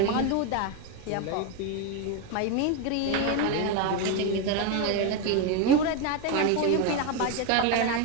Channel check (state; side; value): different; both; correlation 0.02